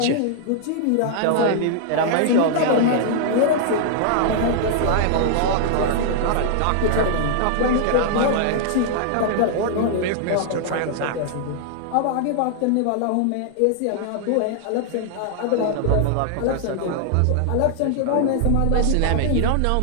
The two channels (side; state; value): both; different; correlation -0.01